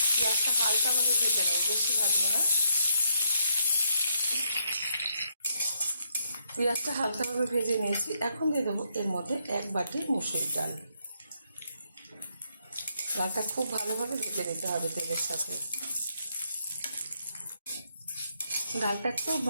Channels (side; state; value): both; inverted; correlation -0.75